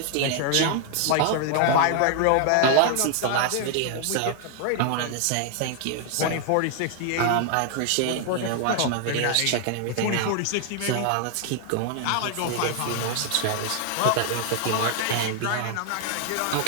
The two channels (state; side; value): different; both; correlation 0.00